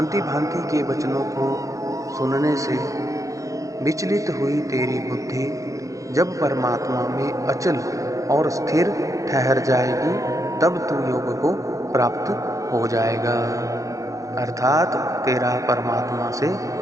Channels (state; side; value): late; left; 0.16 ms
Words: भांति के वचनों को सुनने से विचलित हुई तेरी बुद्धि जब परमात्मा में अचल और स्थिर ठहर जाएगी, तब तू योग को प्राप्त हो जाएगा, अर्थात तेरा परमात्मा से